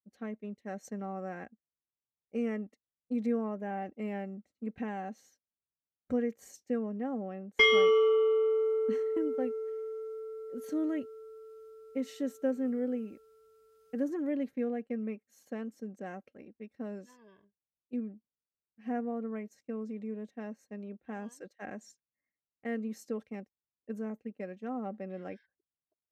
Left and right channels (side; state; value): both; identical; correlation 1.00